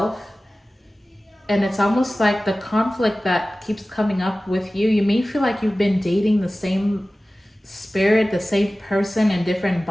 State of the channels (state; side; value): normal; both; correlation 0.96